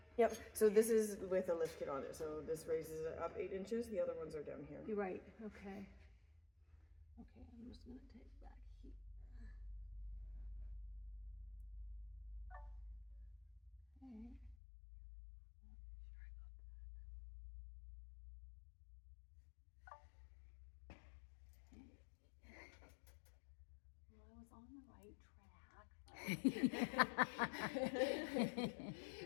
Yep. So this is with a lift kit on it. So this raises it up 8 inches. The other ones are down here. You're right, okay. Okay, I'm just gonna take back here. Okay. Well, I was on the right track.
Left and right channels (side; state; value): right; drops out; at 14.6 s